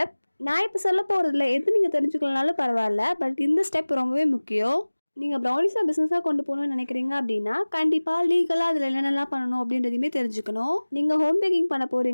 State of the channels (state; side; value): inverted; both; correlation -1.00